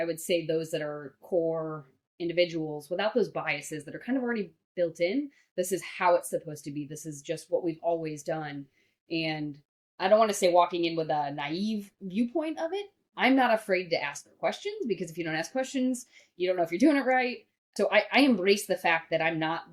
would say those that are core individuals, without those biases that are kind of already built in. This is how it's supposed to be. This is just what we've always done. And I don't want to say walking in with a naive viewpoint of it. I'm not afraid to ask questions, because if you don't ask questions, you don't know if you're doing it right. So I embrace the fact that I'm not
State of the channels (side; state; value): both; identical; correlation 1.00